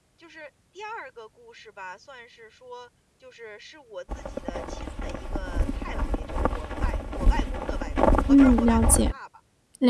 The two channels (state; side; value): identical; both; correlation 1.00